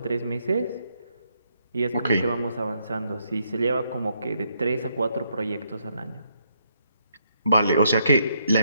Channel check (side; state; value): both; inverted; correlation -0.75